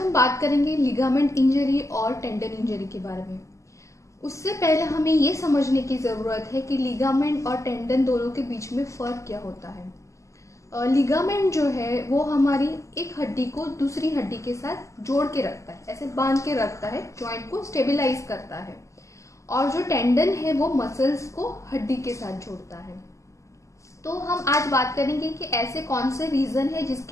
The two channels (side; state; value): right; late; 0.15 ms